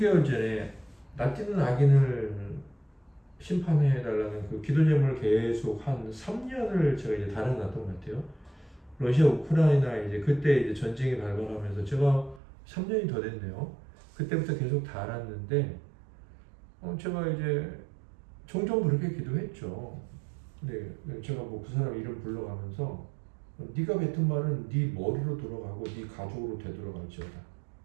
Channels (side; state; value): left; drops out; at 12.4 s